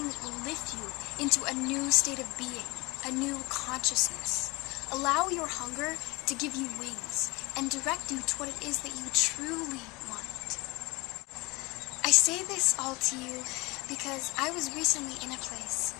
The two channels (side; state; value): right; quieter; 24.3 dB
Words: that will lift you into a new state of being, a new consciousness. Allow your hunger to give you wings and direct you to what it is that you truly want. I say this all to you because I was recently in a place